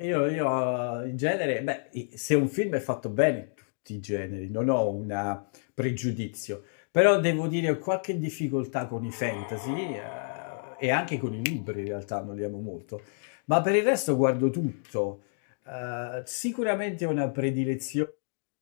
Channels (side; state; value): right; silent; digital silence